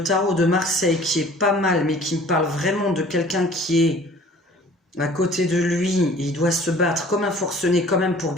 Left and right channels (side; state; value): both; normal; correlation 0.50